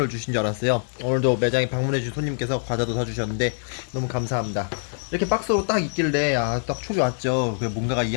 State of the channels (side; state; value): right; silent; digital silence